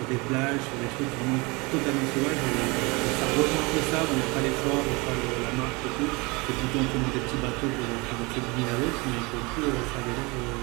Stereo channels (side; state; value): left; quieter; 26.6 dB